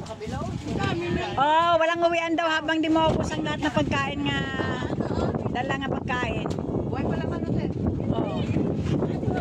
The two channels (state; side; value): identical; both; correlation 1.00